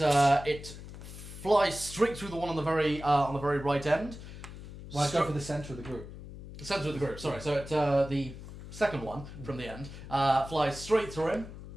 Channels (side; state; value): left; noise; hum, 13 dB below the sound